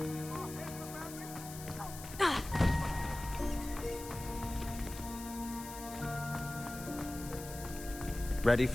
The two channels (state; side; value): noise; left; hiss, 12 dB below the sound